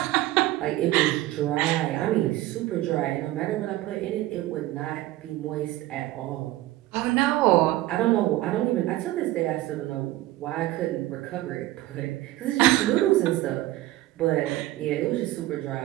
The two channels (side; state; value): left; quieter; 16.4 dB